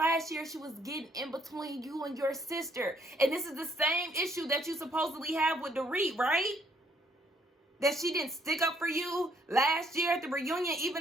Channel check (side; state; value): both; normal; correlation 0.68